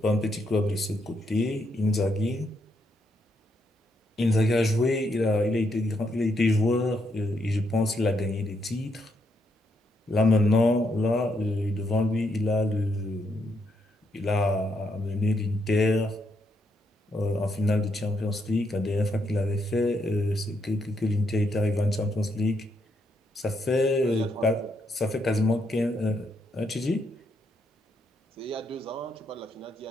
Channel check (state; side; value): normal; both; correlation 0.77